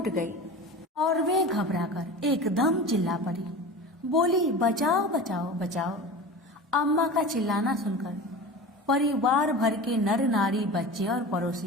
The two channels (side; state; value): both; normal; correlation 0.33